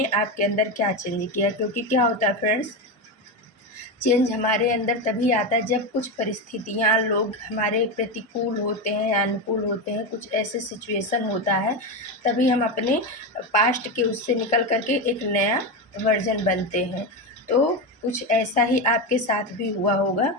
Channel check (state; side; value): normal; both; correlation 0.15